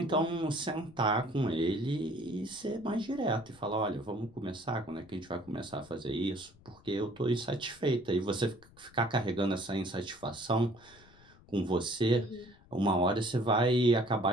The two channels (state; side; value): noise; left; rumble, 25 dB below the sound